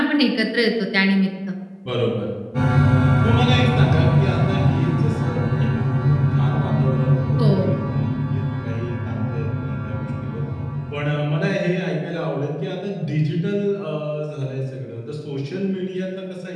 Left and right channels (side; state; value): both; identical; correlation 1.00